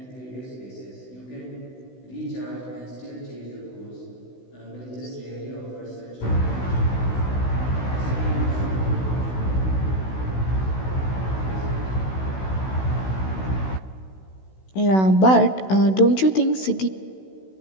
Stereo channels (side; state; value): right; late; 16 ms